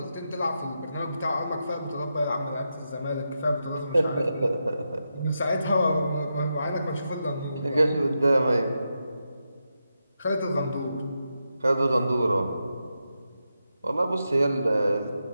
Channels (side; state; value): both; inverted; correlation -0.86